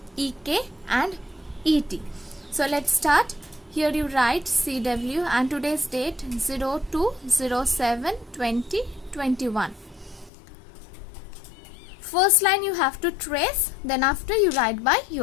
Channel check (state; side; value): drops out; right; at 10.3 s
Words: EK and ET. So let's start. Here you write CW and today's date 02/07/2021. First line you have to trace, then after you write by